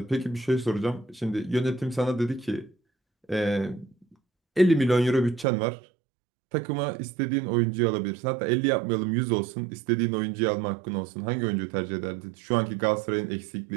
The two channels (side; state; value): left; drops out; at 5.5 s